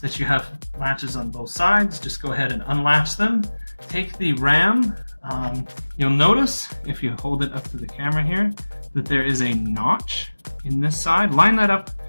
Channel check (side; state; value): both; inverted; correlation -1.00